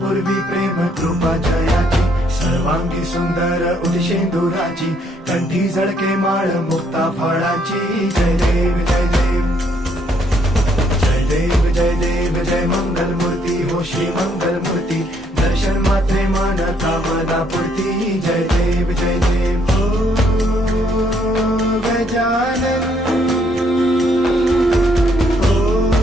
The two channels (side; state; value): both; normal; correlation 0.69